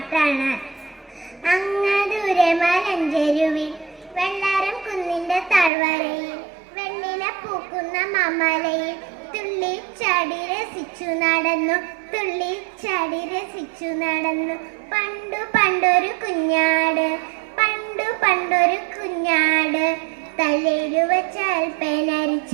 അങ്ങദൂരെ മലഞ്ചെരുവിൽ വെള്ളാരം കുന്നിന്റെ താഴ്വരയിൽ വെണ്ണില പൂക്കുന്ന മാമലയിൽ തുള്ളി ചാടി രസിച്ചു നടന്നു, തുള്ളി ചാടി രസിച്ചു നടന്നു. പണ്ടു പണ്ടൊരു കുഞ്ഞാട്, പണ്ടു പണ്ടൊരു കുഞ്ഞാട്. തലയിലു വെച്ചാൽ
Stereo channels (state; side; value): drops out; left; at 5.7 s